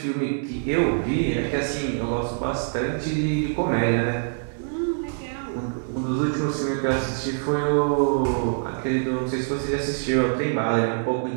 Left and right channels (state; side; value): silent; left; digital silence